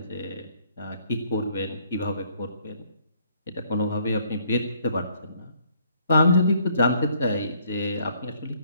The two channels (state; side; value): inverted; both; correlation -0.65